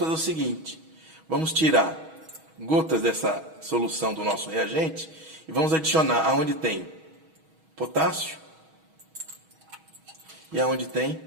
o seguinte, vamos tirar gotas dessa solução do nosso reagente e vamos adicionar aonde tem potássio e aonde tem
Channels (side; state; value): left; late; 6.3 ms